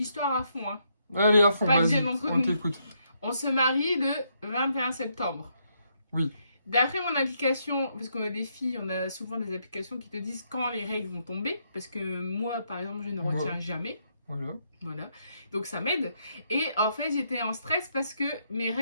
à fond, hein. Allez, à fond, Pas de vas-y, gêne entre on nous. t'écoute. On se marie le 21 septembre. Oui. D'après mon application, parce qu'on a des filles, on a souvent des applications qui te disent quand les règles vont tomber. Parce que moi, par exemple, je ne retiens jamais. Voilà. Donc ça m'aide. Et en fait, j'étais en stress parce que mes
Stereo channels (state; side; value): inverted; both; correlation -0.76